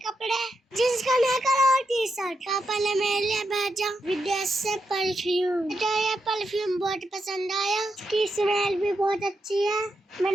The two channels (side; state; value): both; normal; correlation 0.85